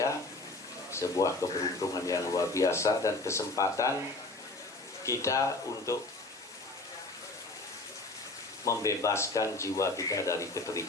sebuah keberuntungan yang luar biasa dan kesempatan kita untuk membebaskan jiwa kita dari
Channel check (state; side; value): quieter; right; 3.0 dB